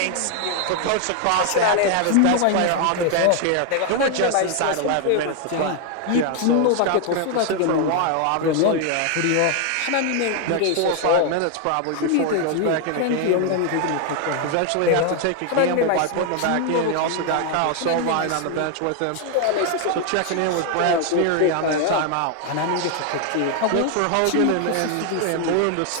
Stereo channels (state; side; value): different; both; correlation 0.00